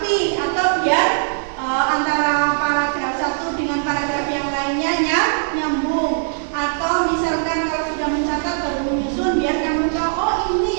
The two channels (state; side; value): silent; left; digital silence